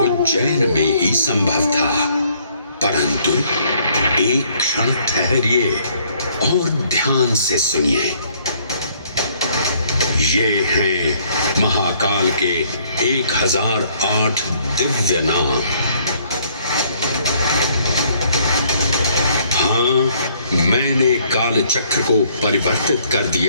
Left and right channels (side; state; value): both; inverted; correlation -0.64